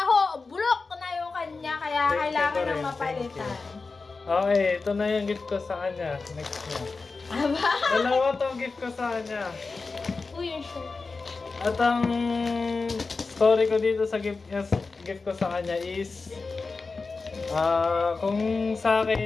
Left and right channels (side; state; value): right; quieter; 4.1 dB